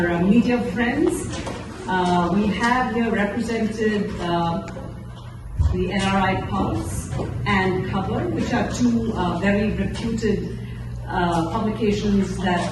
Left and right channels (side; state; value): both; identical; correlation 1.00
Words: media friends. We have here represented the NRI Pulse and Cover, which are two very reputed publications that